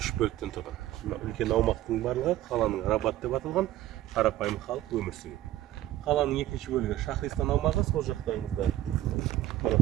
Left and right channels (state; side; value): quieter; left; 14.3 dB